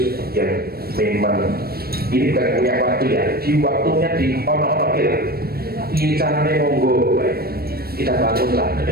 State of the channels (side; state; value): left; late; 0.44 ms